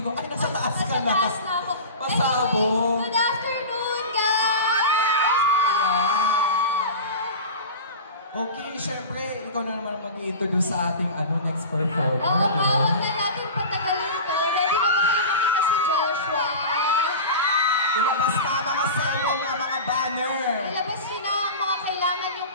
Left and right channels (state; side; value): inverted; both; correlation -0.31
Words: ko, ay, nasa taas ka na. Nasa taas na ako. Pasabog. Good afternoon, guys! Okay, syempre, ikaw na naman mag-i-introduce sa ating next performer. Huwag na natin patagalin ito. Ready na ba kayo makita si Joshua? Ilabas na mga selong ng mga banner. Ilabas nyo na ang mga kailangan yung